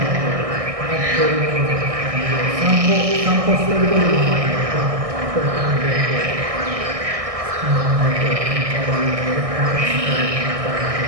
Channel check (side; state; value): left; late; 1.6 ms